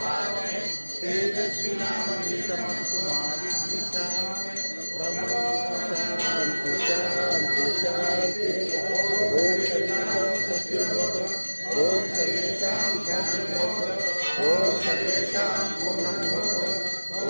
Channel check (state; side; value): inverted; both; correlation -1.00